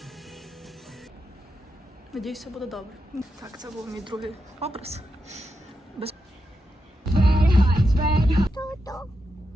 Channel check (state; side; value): normal; both; correlation 0.86